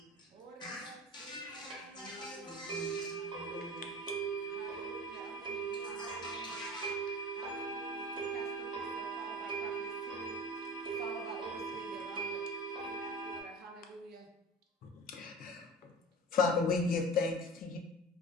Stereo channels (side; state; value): both; normal; correlation 0.36